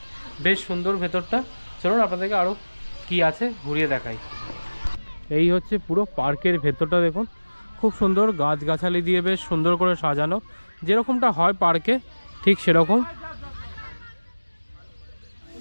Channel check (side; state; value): both; inverted; correlation -1.00